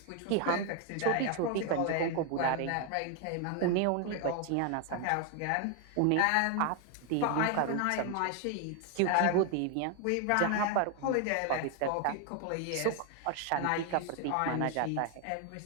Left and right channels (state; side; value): different; both; correlation 0.01